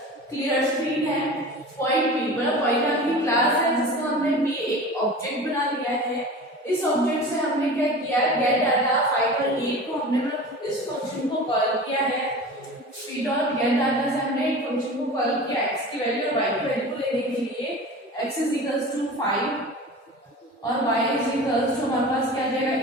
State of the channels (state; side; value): normal; both; correlation 0.35